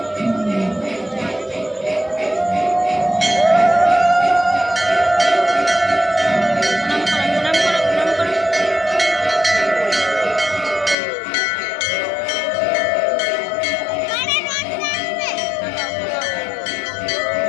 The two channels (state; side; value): drops out; right; at 11.0 s